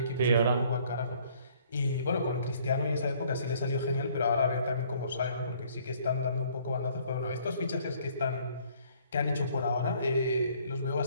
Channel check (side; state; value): both; inverted; correlation -0.60